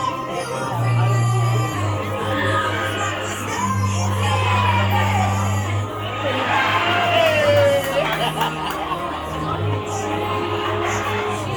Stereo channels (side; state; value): both; identical; correlation 1.00